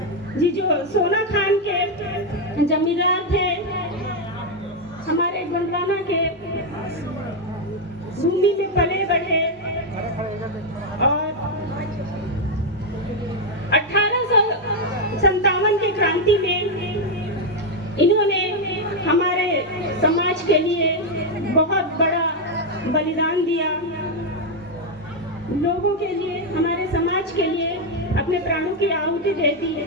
जी जो सोना खान के जमींदार थे, हमारे गोंडवाना के भूमि में पले बढ़े और 1857 की क्रांति में इन्होंने हमारे समाज के लिए बहुत बड़ा बलिदान दिया। लोगों के लिए, हमारे समाज के लिए अपने प्राणों की आहुति दे दी है।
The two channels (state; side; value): normal; both; correlation 0.02